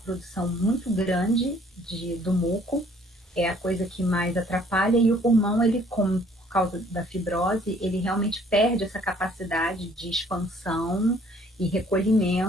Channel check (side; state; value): both; normal; correlation 0.59